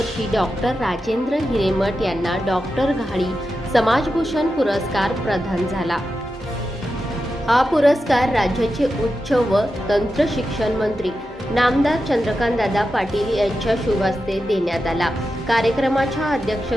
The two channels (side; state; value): both; normal; correlation 0.90